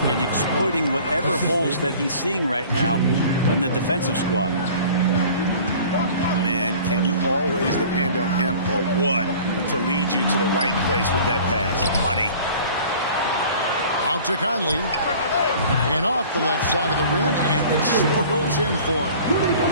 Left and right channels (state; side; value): inverted; both; correlation -0.46